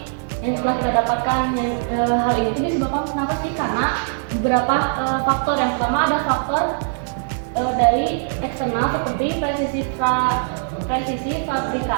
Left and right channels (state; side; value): silent; left; digital silence